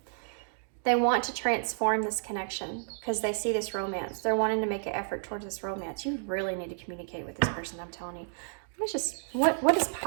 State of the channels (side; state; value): left; silent; digital silence